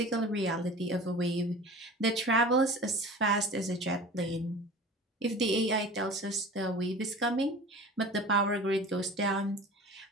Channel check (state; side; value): normal; both; correlation 0.39